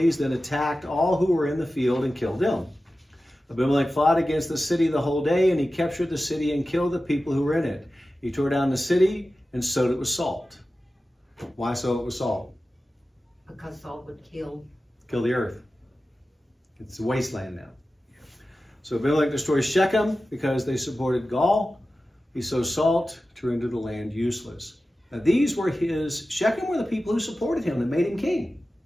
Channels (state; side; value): normal; both; correlation 0.94